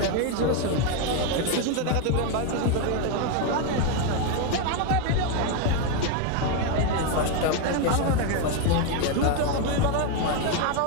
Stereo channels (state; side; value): different; both; correlation 0.01